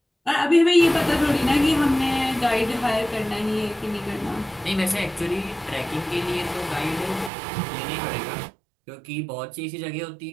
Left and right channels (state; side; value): drops out; left; at 7.3 s